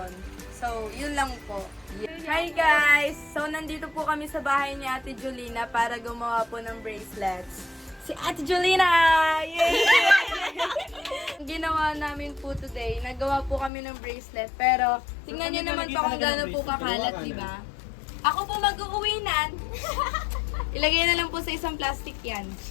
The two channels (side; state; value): right; drops out; at 13.7 s